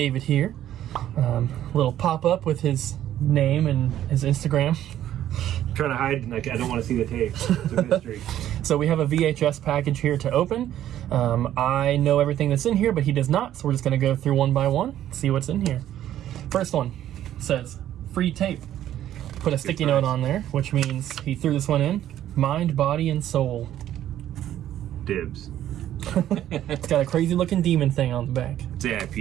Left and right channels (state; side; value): quieter; left; 11.9 dB